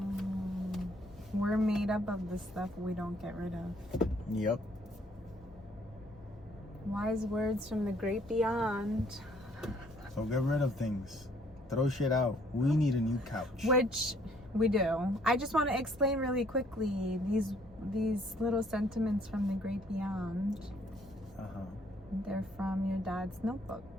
We're made up of the stuff we don't get rid of. Yep. Wise words from the great beyond. So get rid of things. Throw shit out. We need a new couch. Which we do. I just want to explain really quickly these little sentiments from the great beyond. They're from your dad's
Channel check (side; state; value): both; normal; correlation 0.63